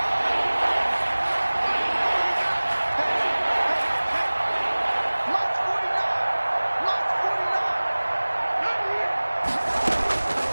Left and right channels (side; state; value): both; inverted; correlation -1.00